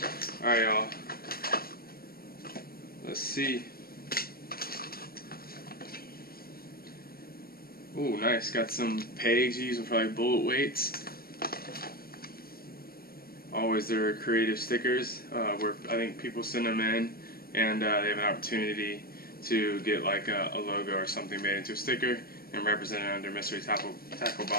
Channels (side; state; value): right; late; 0.44 ms